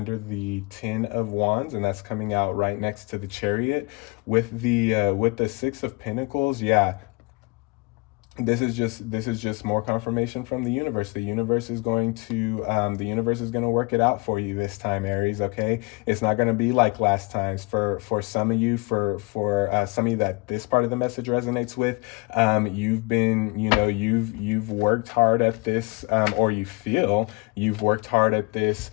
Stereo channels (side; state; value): right; quieter; 27.1 dB